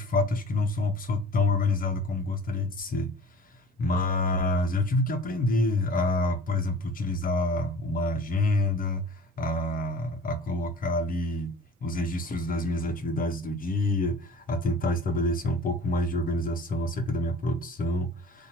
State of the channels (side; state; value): both; normal; correlation 0.44